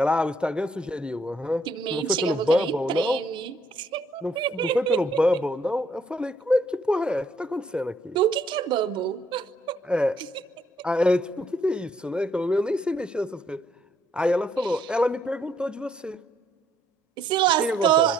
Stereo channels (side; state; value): both; normal; correlation 0.70